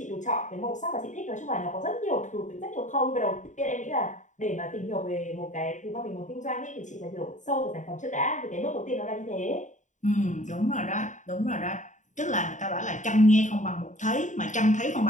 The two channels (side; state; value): right; late; 0.36 ms